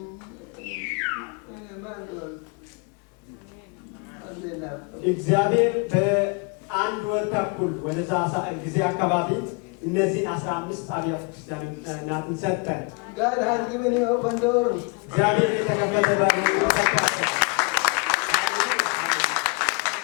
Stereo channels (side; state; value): right; quieter; 34.0 dB